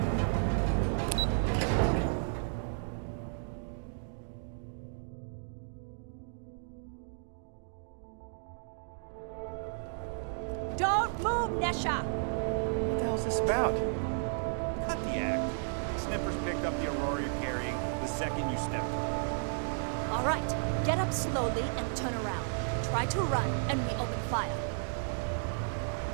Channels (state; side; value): silent; left; digital silence